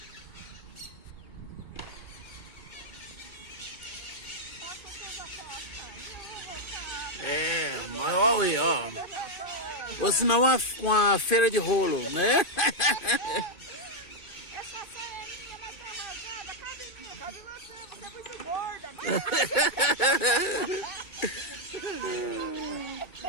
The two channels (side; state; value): right; late; 2.2 ms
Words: Mas olha aí, ó. Ou senão uma feira de rolo, né? Essa saia é minha, mas tá rasgada. Cabe em mim, cabe em você. Você é muito gorda.